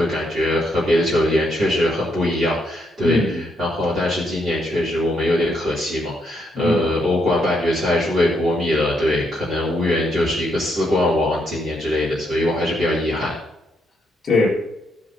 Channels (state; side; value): normal; both; correlation 0.76